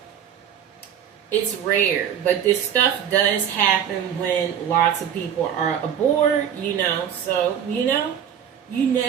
it's rare, but this stuff does happen when lots of people are aboard, so, you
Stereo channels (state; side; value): quieter; left; 8.9 dB